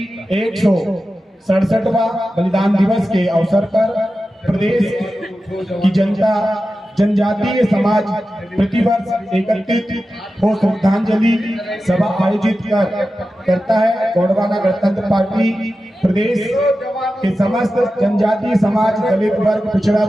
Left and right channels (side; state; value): both; normal; correlation 0.93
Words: 167वां बलिदान दिवस के अवसर पर प्रदेश की जनता, जनजातीय समाज प्रतिवर्ष एकत्रित हो श्रद्धांजलि सभा आयोजित करता है। गोंडवाना गणतंत्र पार्टी प्रदेश के समस्त जनजातीय समाज, दलित वर्ग, पिछड़ा